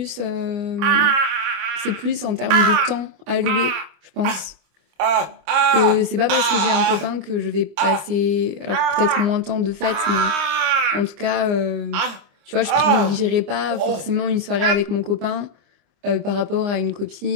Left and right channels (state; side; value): late; left; 26 ms